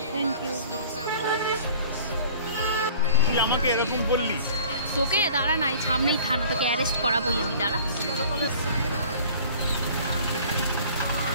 তুই আমাকে এরকম বললি? তোকে দাঁড়া নাই, সামনেই থানা, তোকে অ্যারেস্ট করাবোই আমি, দাঁড়া।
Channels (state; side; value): inverted; both; correlation -0.48